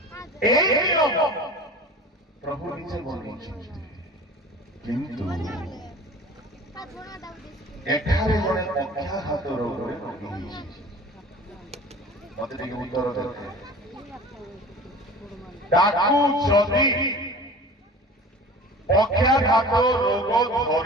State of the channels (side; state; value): both; normal; correlation 0.40